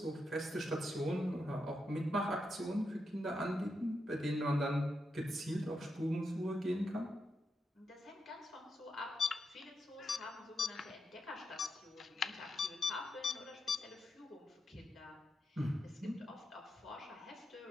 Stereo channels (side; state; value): both; normal; correlation 0.84